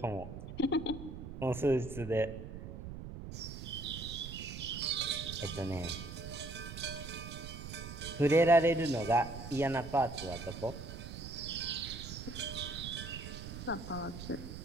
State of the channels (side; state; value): right; noise; rumble, 9 dB below the sound